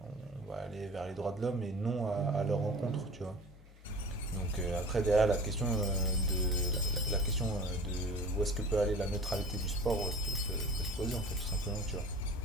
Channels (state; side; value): normal; both; correlation 0.40